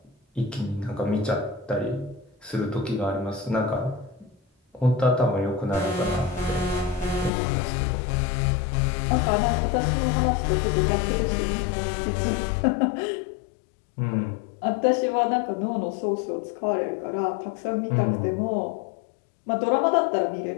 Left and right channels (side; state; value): right; drops out; at 7.3 s